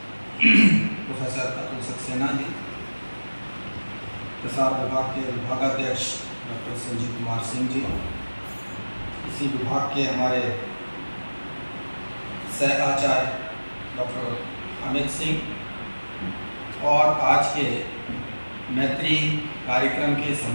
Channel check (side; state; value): both; inverted; correlation -1.00